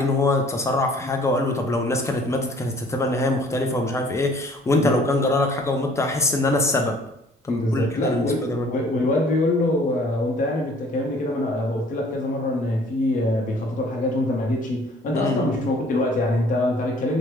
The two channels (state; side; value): normal; both; correlation 0.55